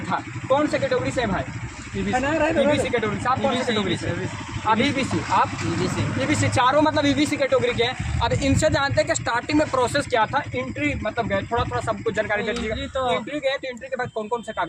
कौन से कैटेगरी से है भाई? ईबीसी कैटेगरी से। आप कौन सी कैटेगरी से? अब ईबीसी। आप ईबीसी। चारों मतलब ईबीसी कैटेगरी के हैं। अब इनसे जानते हैं कि स्टार्टिंग में प्रोसेस क्या था। एंट्री मतलब गए, थोड़ा सबको जानकारी दे दीजिएगा। एंट्री गए तो एंट्री के बाद कौन कौन से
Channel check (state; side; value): identical; both; correlation 1.00